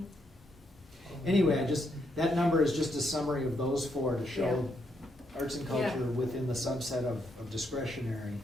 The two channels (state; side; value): normal; both; correlation 0.77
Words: Anyway, that number is just a summary of those four to show arts and Yeah. culture within the subset of discretionary